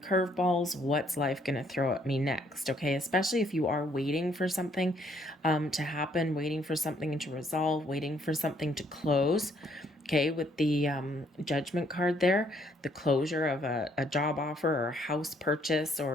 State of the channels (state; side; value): normal; both; correlation 0.67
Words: What's life going to throw at me next? Okay, especially if you are waiting for something to happen, waiting for something to resolve, waiting for something to close. Okay, with the Judgment card there, the closure of a job offer or house purchase